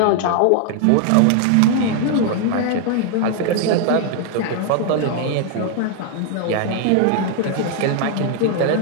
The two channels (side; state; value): both; different; correlation 0.00